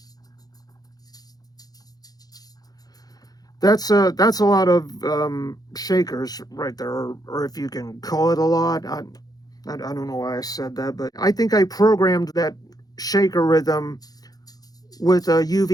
that's a lot of shakers right there, or if you can call it a lot. I don't know why I said that, but I think I programmed that shaker rhythm with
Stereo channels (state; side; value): late; right; 0.19 ms